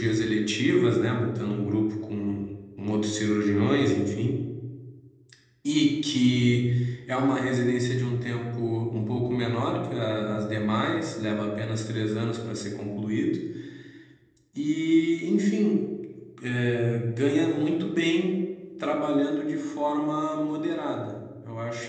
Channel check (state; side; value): identical; both; correlation 1.00